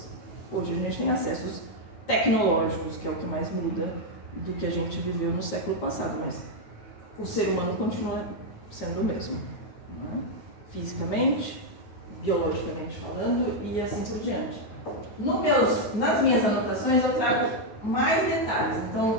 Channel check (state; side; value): late; right; 9.4 ms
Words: Hoje a gente tem acessos tecnológicos, que é o que mais muda do que a gente viveu no século passado, mas o ser humano continua sendo o mesmo, né? Fisicamente, biologicamente falando e assim por diante. Nas minhas anotações eu trago mais detalhes.